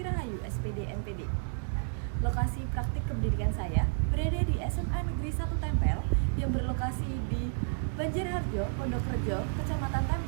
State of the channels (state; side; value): silent; left; digital silence